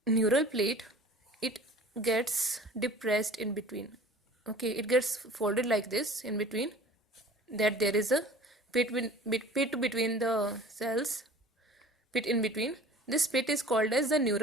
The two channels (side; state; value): both; normal; correlation 0.45